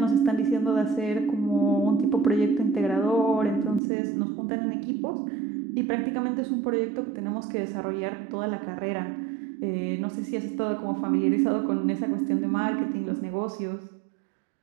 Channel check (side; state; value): left; drops out; at 3.8 s